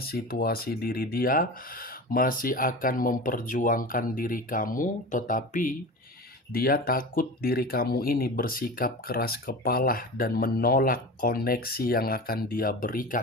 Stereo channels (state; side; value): normal; both; correlation 0.31